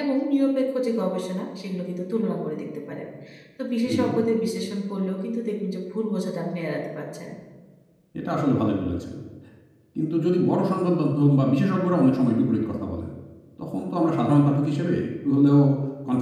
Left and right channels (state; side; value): identical; both; correlation 1.00